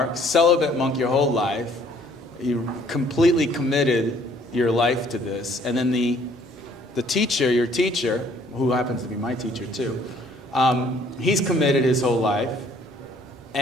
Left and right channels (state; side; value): normal; both; correlation 0.60